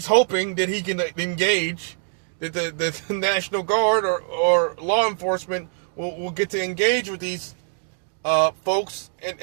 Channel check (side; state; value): left; silent; digital silence